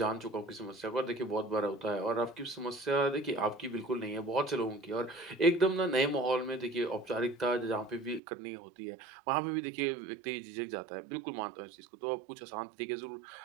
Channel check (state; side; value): drops out; left; at 8.2 s